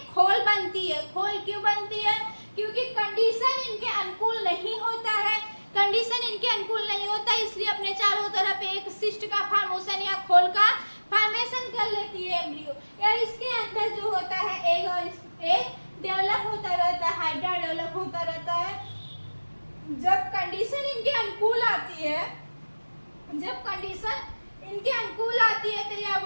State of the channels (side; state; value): both; inverted; correlation -1.00